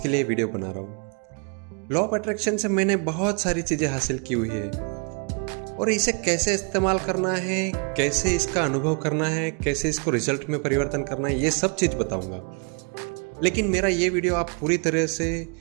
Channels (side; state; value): left; quieter; 36.7 dB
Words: लिए वीडियो बना रहा हूँ। लॉ ऑफ अट्रैक्शन से मैंने बहुत सारी चीजें हासिल की हुई है और इसे कैसे इस्तेमाल करना है, कैसे इसका अनुभव करना है, कैसे इसको रिजल्ट में परिवर्तन करना है, ये सब चीज़ बताऊंगा। लेकिन मेरा ये वीडियो आप पूरी तरह से